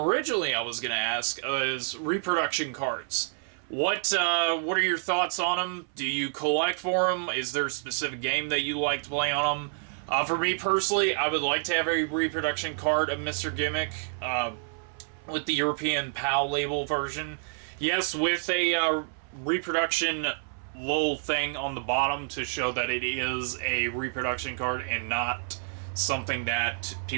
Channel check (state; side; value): silent; left; 59 dB below the other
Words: I was going to ask is reproduction cards. What are your thoughts on them? Do you collect for them? Is there a specific game that you like to play on them? For me personally, I would like to have a reproduction card of Mr. Gimmick with the European PAL label version. Yes, with a reproduction little thing on the bottom to show that it is a reproduction card and not something that